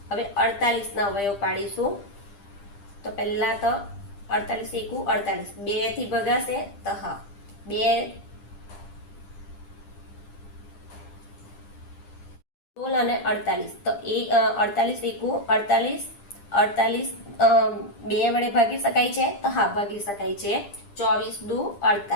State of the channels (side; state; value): right; late; 10 ms